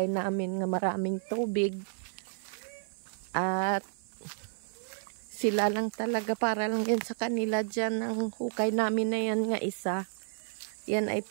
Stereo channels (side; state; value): left; silent; 56 dB below the other